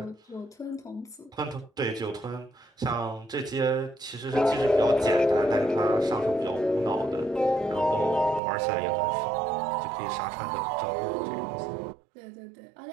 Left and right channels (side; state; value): left; drops out; at 8.4 s